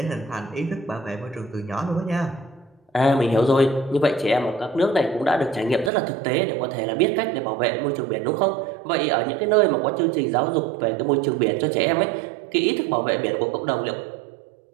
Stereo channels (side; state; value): left; drops out; at 5.9 s